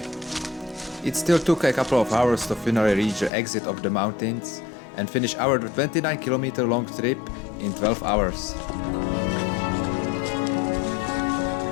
It still took a couple of hours to finally reach the exit of the mountains and finish our 29-kilometer long trip in 12 hours.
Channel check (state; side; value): drops out; right; at 3.3 s